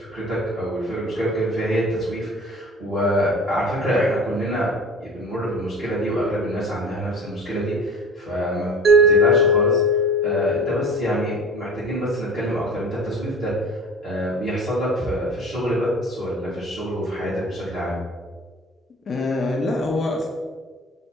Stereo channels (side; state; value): both; normal; correlation 0.41